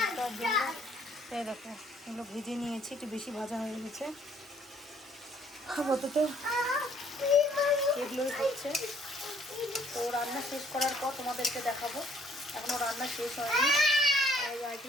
জন্য এই দেখো এগুলো ভেজে নিয়েছি, একটু বেশি ভাজা হয়ে গেছে। আপাতত এগুলোই হচ্ছে। তো রান্না শেষ করার পর তোমাদেরকে দেখাবো। এখনও রান্না শেষ হয়নি,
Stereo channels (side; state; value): both; normal; correlation 0.62